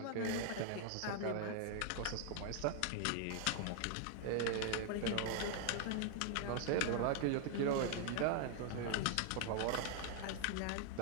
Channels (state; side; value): different; both; correlation 0.00